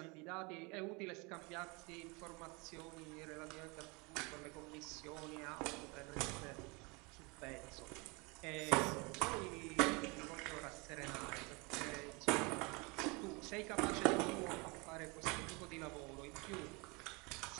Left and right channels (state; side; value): quieter; left; 28.4 dB